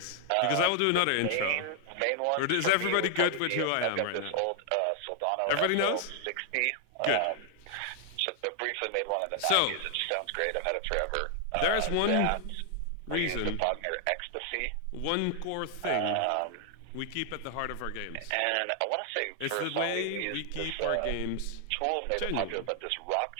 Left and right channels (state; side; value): different; both; correlation 0.00